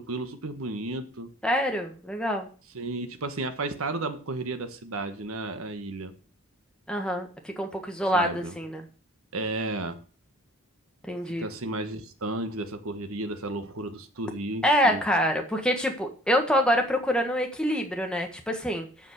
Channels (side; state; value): both; normal; correlation 0.50